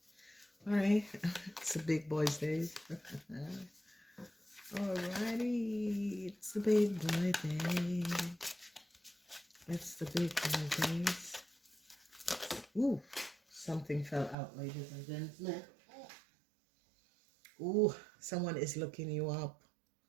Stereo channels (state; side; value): drops out; left; at 14.4 s